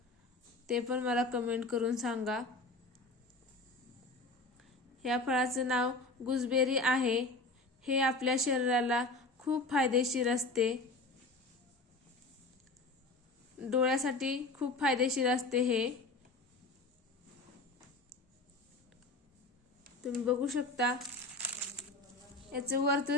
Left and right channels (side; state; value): right; quieter; 3.1 dB